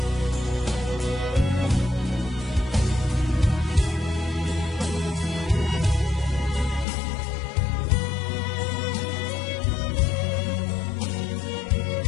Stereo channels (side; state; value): right; drops out; at 6.9 s